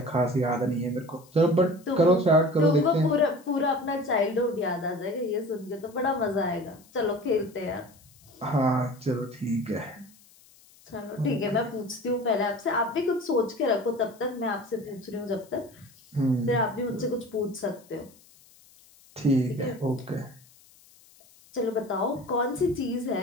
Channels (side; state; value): left; noise; hiss, 27 dB below the sound